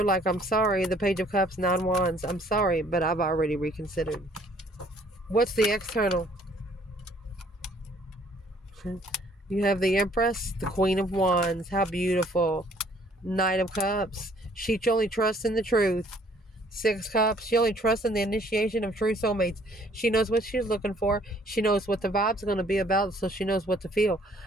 like, I'm sorry, the Page of Cups, 9 Wands. I'm sorry, but I've already reconsidered. What's the external? You have the Empress, the Queen of Wands. How beautiful. Knight of Cups. She only trusts in the truth. Six Cups. She only trusts in the initiation of true soulmates. She knows what she's looking for. She knows what the vibes are going to be about, so she knows what to feel.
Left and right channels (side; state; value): both; normal; correlation 0.60